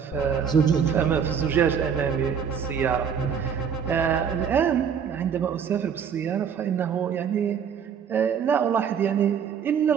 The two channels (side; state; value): left; quieter; 7.4 dB